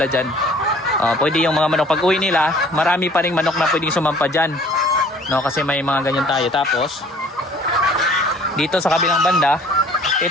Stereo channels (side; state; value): both; normal; correlation 0.53